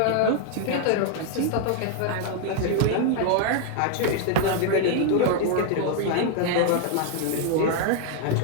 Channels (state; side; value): different; both; correlation 0.00